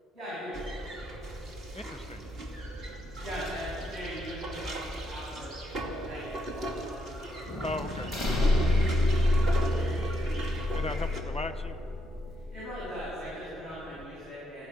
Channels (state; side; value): normal; both; correlation 0.79